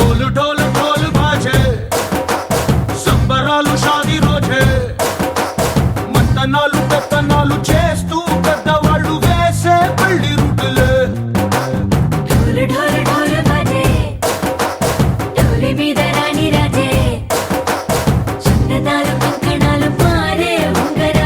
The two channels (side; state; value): both; identical; correlation 1.00